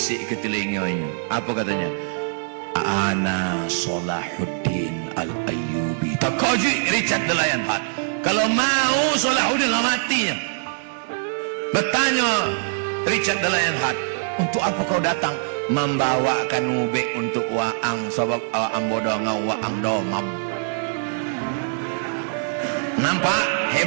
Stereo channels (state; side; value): silent; left; digital silence